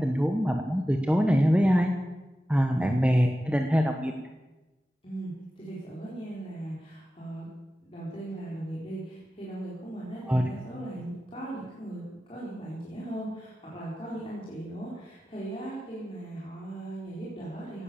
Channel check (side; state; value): both; normal; correlation 0.94